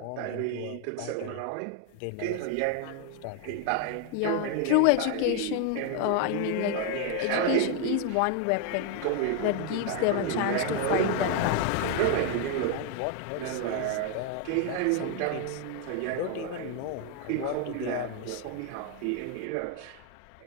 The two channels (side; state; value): both; different; correlation 0.01